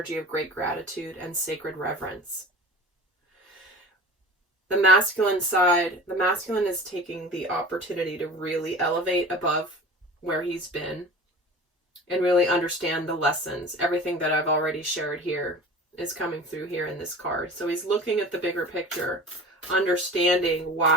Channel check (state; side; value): normal; both; correlation 0.38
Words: of great gratitude and sacred reverence. The masculine side, the masculine is taking the opportunity to really elevate above where he's been and really understand the lessons. Everything that I've already shared here is coming through here in this card. So he's looking at the bigger picture, understanding